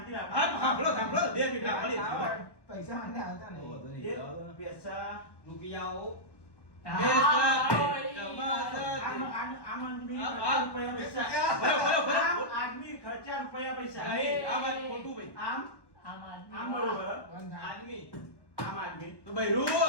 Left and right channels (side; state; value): right; late; 1.1 ms